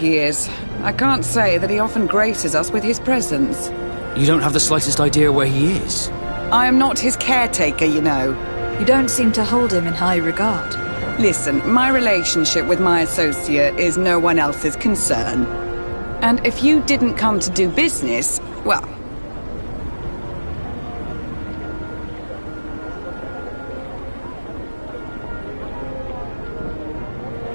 is. I can't say that he often graces us with his presence. You don't have the slightest idea where he is? I am not his caretaker, you know. You don't seem to hold him in high regard. Listen, my relationship with my associate is no one else's concern. And if you didn't come to do business, well...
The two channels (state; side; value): inverted; both; correlation -1.00